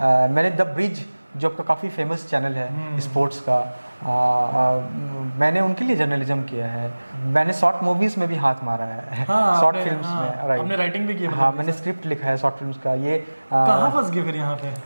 द ब्रिज जो आपका काफ़ी फेमस चैनल है स्पोर्ट्स का, मैंने उनके लिए जर्नलिज्म किया है। मैंने शॉर्ट मूवीज़ में भी हाथ मारा है, शॉर्ट फिल्म्स में। राइट, आपने राइटिंग भी की? हाँ, मैंने स्क्रिप्ट लिखा है शॉर्ट फिल्म्स का। ये कहाँ फंस गए फिर यहाँ पे?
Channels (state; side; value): inverted; both; correlation -1.00